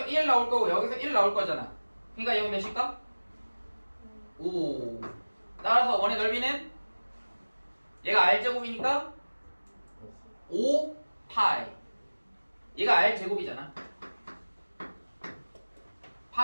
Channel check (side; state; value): both; inverted; correlation -1.00